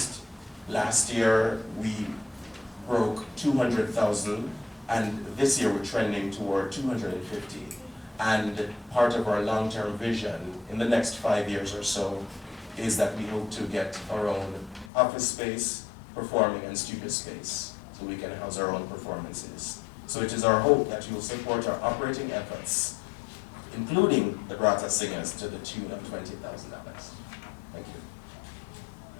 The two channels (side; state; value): right; drops out; at 14.9 s